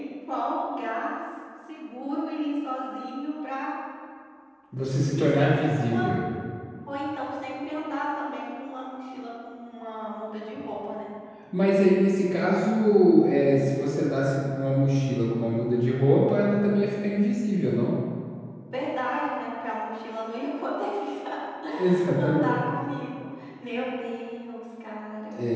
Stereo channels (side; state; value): both; identical; correlation 1.00